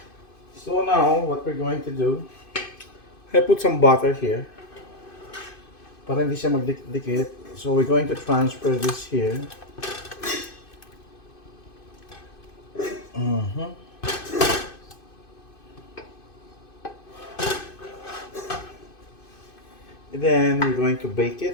So now, what we're going to do, I put some butter here. Para hindi siya magdikit. So we're going to transfer this here. And then we're going to bake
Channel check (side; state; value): right; late; 2.5 ms